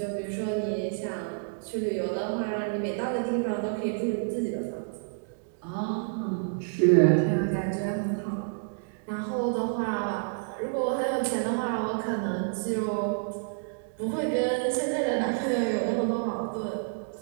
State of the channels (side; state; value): left; silent; digital silence